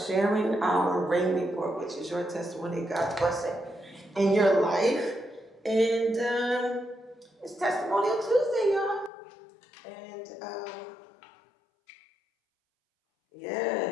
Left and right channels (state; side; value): drops out; right; at 9.1 s